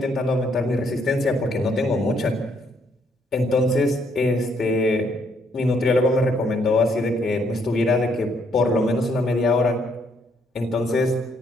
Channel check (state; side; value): normal; both; correlation 0.70